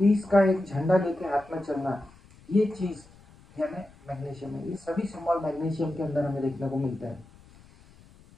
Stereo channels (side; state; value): left; noise; rumble, 25 dB below the sound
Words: का एक झंडा लेके हाथ में चलना, ये चीज यानी मैग्नीशियम है। ये सभी सिंबल मैग्नीशियम के अंदर हमें देखने को मिलता है।